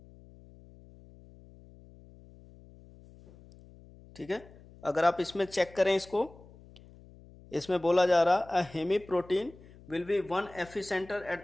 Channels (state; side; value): noise; left; hum, 22 dB below the sound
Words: ठीक है, अगर आप इसमें चेक करें इसको, इसमें बोला जा रहा a haem protein will be 1 Fe centre